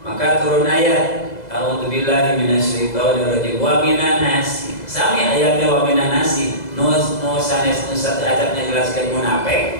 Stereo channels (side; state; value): right; late; 2.0 ms